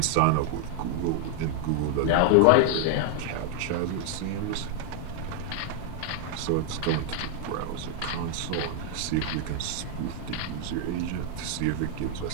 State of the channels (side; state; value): both; different; correlation 0.00